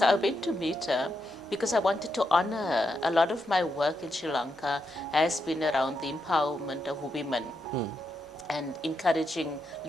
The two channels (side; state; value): both; normal; correlation 0.83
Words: I went to meet her because I wanted to honor her. A lot of my work in Sri Lanka has been around the empowerment of women and encouraging